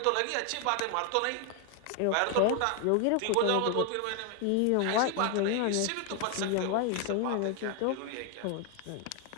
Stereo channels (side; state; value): both; different; correlation 0.01